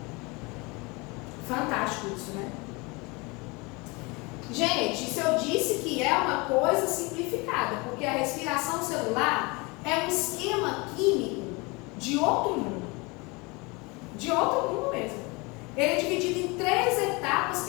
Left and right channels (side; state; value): right; quieter; 26.7 dB